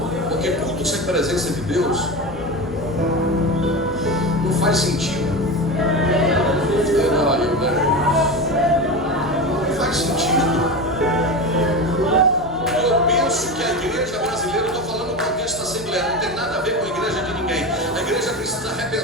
Porque culto sem presença de Deus não faz sentido. Não faz sentido. Eu penso que a igreja brasileira, eu estou falando do contexto da Assembleia, não tem nada a ver com a igreja de ninguém. A igreja precisa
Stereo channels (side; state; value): both; normal; correlation 0.23